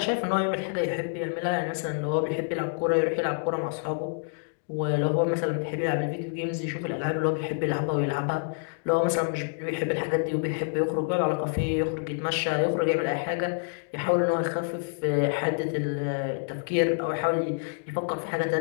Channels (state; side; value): silent; right; digital silence